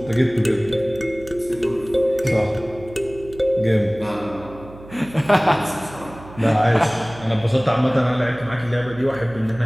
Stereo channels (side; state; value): right; noise; hum, 18 dB below the sound